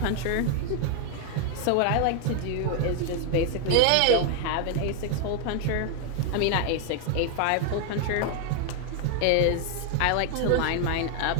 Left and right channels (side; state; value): both; different; correlation 0.00